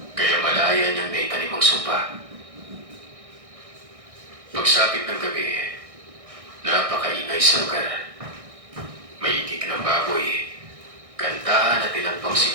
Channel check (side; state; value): left; late; 1.6 ms